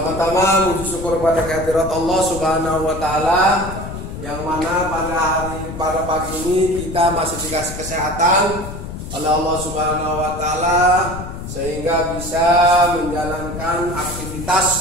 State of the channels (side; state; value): left; noise; rumble, 9 dB below the sound